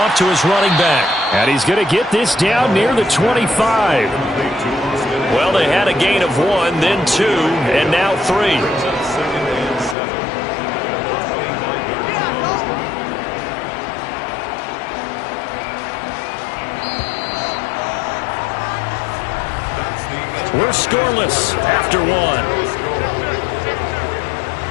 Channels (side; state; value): right; drops out; at 10.0 s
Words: to his running back. And he's going to get this down near the 25. Well, they had a gain of 1, then 2, and now 3. We're scoreless after 1.